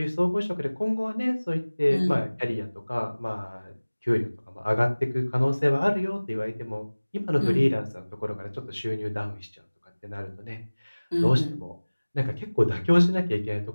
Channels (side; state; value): both; inverted; correlation -1.00